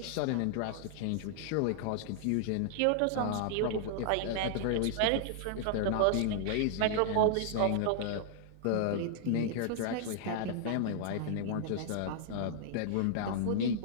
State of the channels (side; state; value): both; different; correlation -0.01